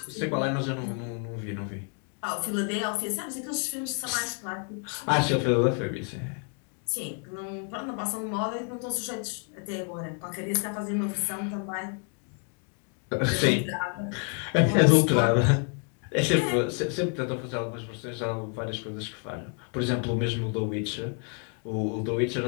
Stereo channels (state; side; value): quieter; right; 38.2 dB